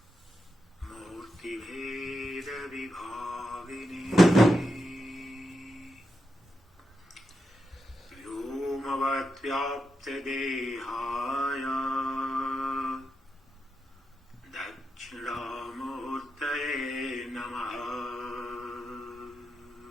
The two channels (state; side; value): normal; both; correlation 0.86